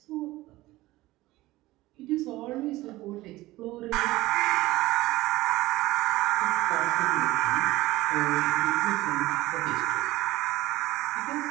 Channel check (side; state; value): left; quieter; 18.1 dB